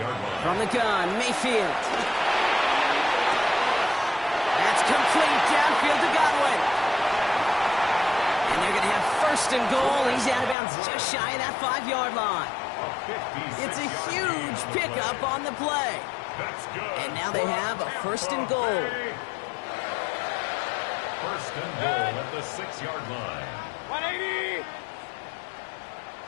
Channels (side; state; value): right; drops out; at 10.6 s